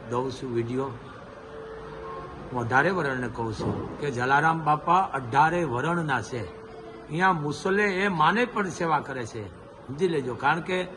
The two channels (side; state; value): both; identical; correlation 1.00